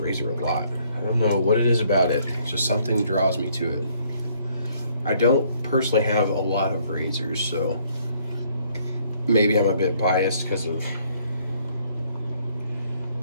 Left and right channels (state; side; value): inverted; both; correlation -0.65